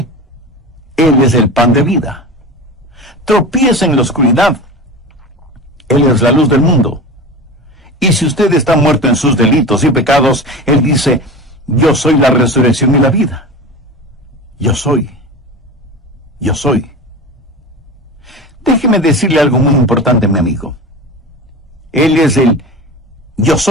Él es el pan de vida. Tropieza en la oscuridad. Él es la luz del mundo. Y si usted está muerto en sus delitos y pecados, Él dice, yo soy la resurrección y la vida. Yo soy. Yo soy. Déjeme decirle algo muy importante, mi amigo. Él es el yo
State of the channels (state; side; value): normal; both; correlation 0.30